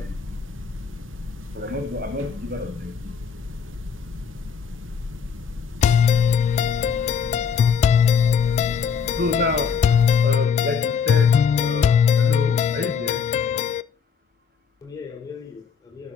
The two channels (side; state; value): right; quieter; 6.6 dB